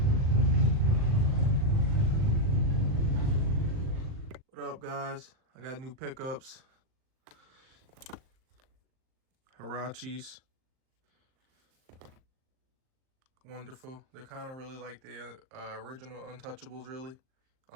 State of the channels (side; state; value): left; late; 39 ms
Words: What up, guys? I got new pickups. Hirachis. Wonderful. They're kind of really like the original Untouchables, really,